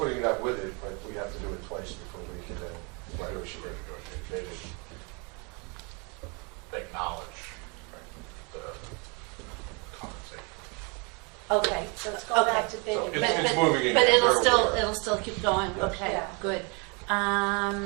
it out with it, but we have to do it twice before we can then negotiate. They didn't acknowledge the compensation. Okay. So let's go back to bid. So and- it's moving again. But We're aware. it'll still keep going, okay, Yeah. good.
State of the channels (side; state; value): left; quieter; 32.2 dB